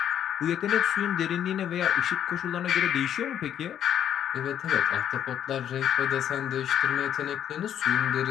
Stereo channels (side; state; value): right; quieter; 9.9 dB